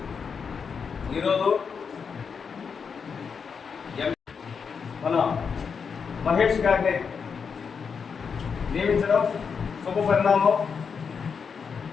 ఈరోజు మన మహేష్ గారిని నియమించడం శుభ పరిణామం.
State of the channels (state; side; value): quieter; right; 6.0 dB